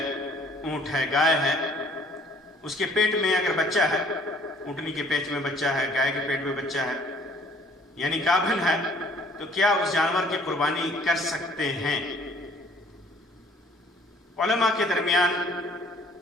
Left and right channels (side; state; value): both; normal; correlation 0.56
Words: اونٹ ہے، گائے ہے، اس کے پیٹ میں اگر بچہ ہے، اونٹنی کے پیٹ میں بچہ ہے، گائے کے پیٹ میں بچہ ہے، یعنی گابھن ہے، تو کیا اس جانور کی قربانی کر سکتے ہیں؟ علماء کے درمیان